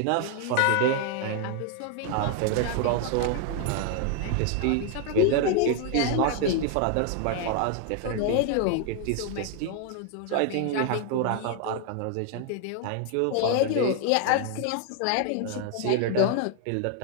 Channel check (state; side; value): different; both; correlation 0.00